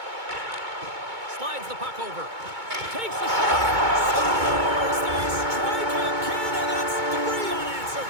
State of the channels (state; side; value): late; left; 2.2 ms